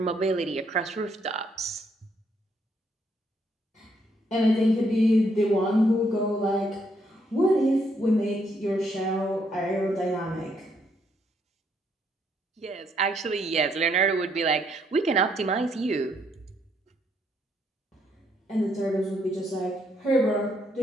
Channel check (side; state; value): both; normal; correlation 0.72